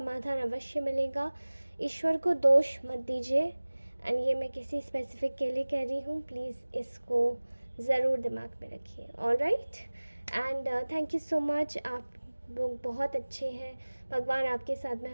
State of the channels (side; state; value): both; inverted; correlation -1.00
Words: अवश्य मिलेगा। ईश्वर को दोष मत दीजिए, एंड ये मैं किसी स्पेसिफिक के लिए कह रही हूँ, प्लीज़ इसको ज़रूर दिमाग में रखिए। Alright, and thank you so much. आप लोग बहुत अच्छे हैं, भगवान आपके साथ में